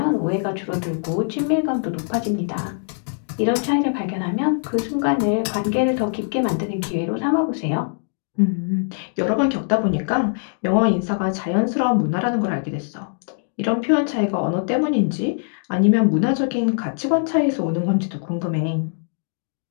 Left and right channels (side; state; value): right; silent; digital silence